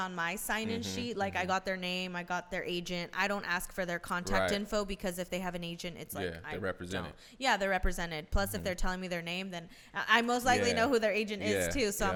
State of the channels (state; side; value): identical; both; correlation 1.00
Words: my sign-in sheet. Like I got their name, I got their agent. I don't ask for their contact info, because if they have an agent, it's like they're represented. Yeah, they're represented. Plus, if they're telling me their name, then I most likely know who their agent is too. So I'm